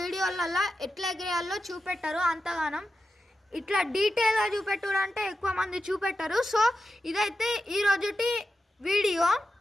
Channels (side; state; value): both; normal; correlation 0.90